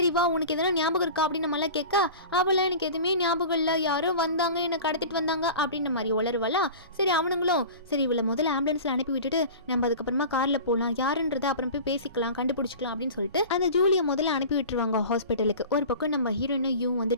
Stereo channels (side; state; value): both; inverted; correlation -0.36